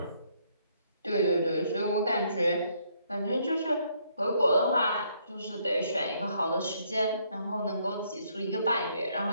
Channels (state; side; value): inverted; both; correlation -0.70